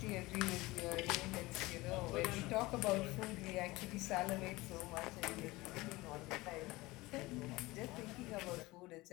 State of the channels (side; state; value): right; quieter; 20.9 dB